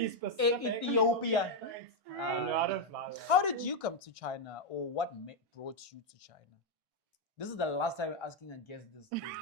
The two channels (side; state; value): left; late; 1.6 ms